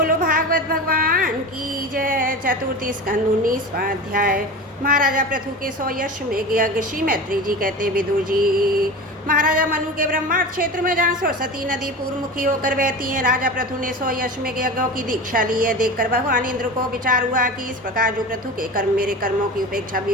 भागवत भगवान की जय। चतुर्थी स्कंद 19वां अध्याय। महाराजा पृथु के 100 यश में यज्ञ। श्री मैत्री जी कहते विदुर जी, महाराजा मनु के ब्रह्मांड क्षेत्र में जहाँ सरस्वती नदी पूर्वमुखी होकर बहती है, राजा पृथु ने 100 यश में यज्ञों की दीक्षा ली है। देखकर भगवान इंद्र को विचार हुआ कि इस प्रकार जो पृथु के कर्म मेरे कर्मों की उपेक्षा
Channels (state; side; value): normal; both; correlation 0.30